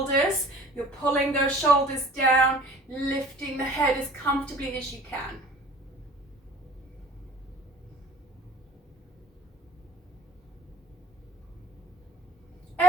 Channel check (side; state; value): both; normal; correlation 0.53